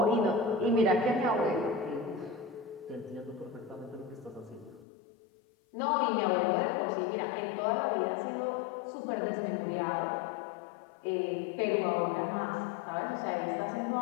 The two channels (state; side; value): drops out; right; at 4.9 s